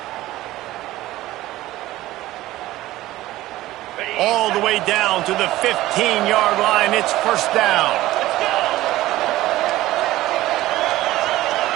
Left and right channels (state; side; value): quieter; left; 16.3 dB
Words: All the way down to the 15-yard line. It's first down.